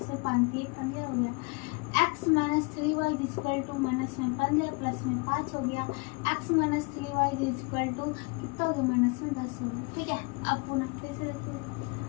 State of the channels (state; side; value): quieter; right; 30.6 dB